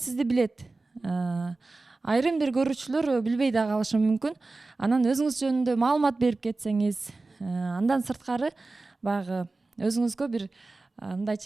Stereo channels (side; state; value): left; quieter; 3.4 dB